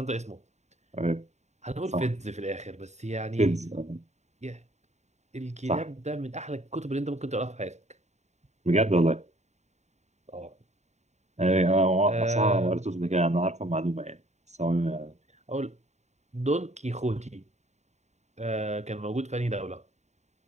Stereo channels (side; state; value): left; late; 0.33 ms